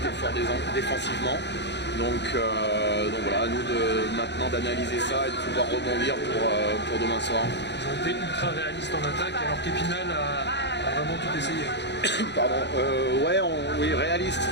étaient forts défensivement. Donc voilà, à nous maintenant d'analyser ça et de pouvoir rebondir pour demain soir. Ils ont été ultra réalistes en attaque alors qu'Épinal a vraiment tout essayé. Pardon, oui, réaliste,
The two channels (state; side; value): late; right; 0.50 ms